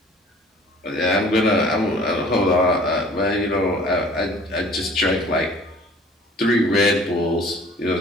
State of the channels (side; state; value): both; normal; correlation 0.50